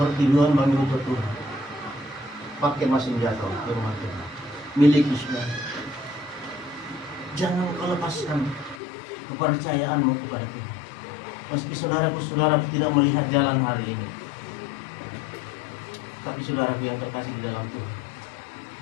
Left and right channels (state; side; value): drops out; right; at 8.8 s